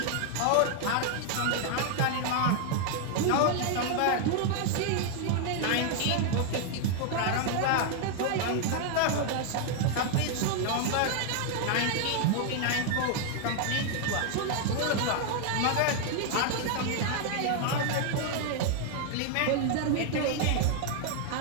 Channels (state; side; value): different; both; correlation 0.00